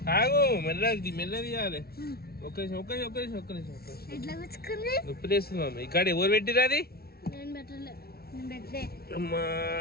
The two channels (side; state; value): right; late; 0.45 ms